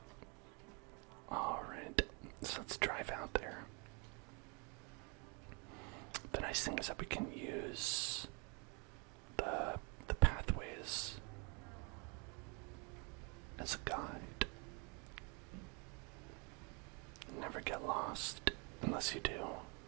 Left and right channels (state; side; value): quieter; left; 31.3 dB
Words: Alright, so let's drive out there. The nice thing is that we can use the pathways as a guide. Never get lost unless you do.